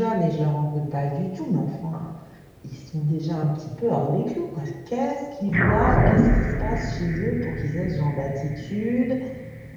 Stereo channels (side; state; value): both; identical; correlation 1.00